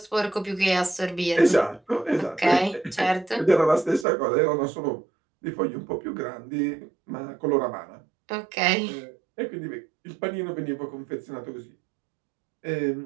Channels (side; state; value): left; drops out; at 4.0 s